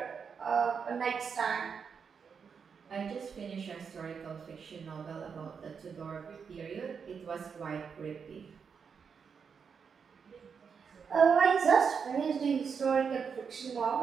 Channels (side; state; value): left; quieter; 6.3 dB